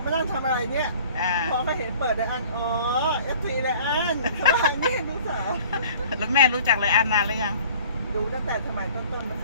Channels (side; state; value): both; inverted; correlation -0.50